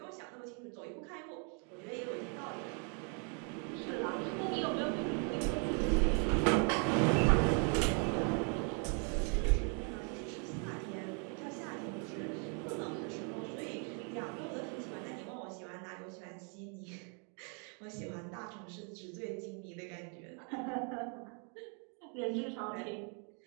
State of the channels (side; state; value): left; quieter; 38.8 dB